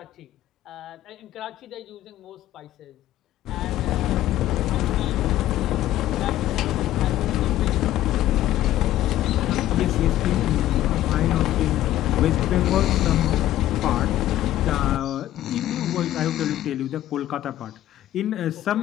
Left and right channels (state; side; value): quieter; right; 13.6 dB